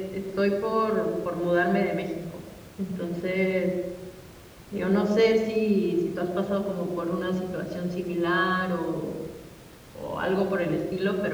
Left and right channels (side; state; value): both; identical; correlation 1.00